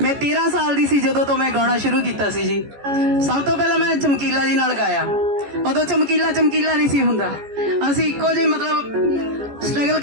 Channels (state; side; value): late; left; 14 ms